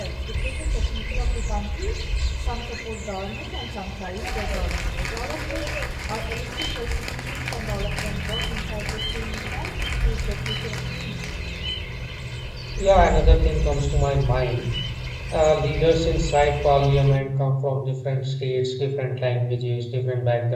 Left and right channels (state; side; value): identical; both; correlation 1.00